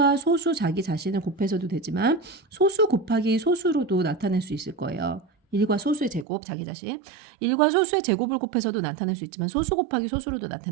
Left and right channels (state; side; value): drops out; left; at 6.2 s